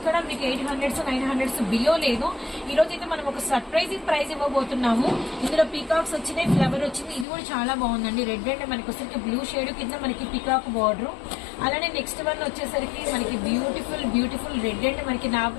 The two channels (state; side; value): drops out; right; at 7.2 s